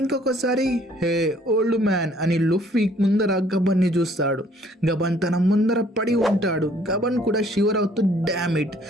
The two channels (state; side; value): normal; both; correlation 0.60